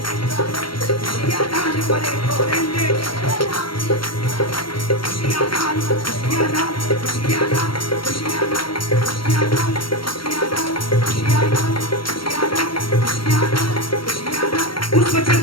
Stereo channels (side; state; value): right; late; 0.73 ms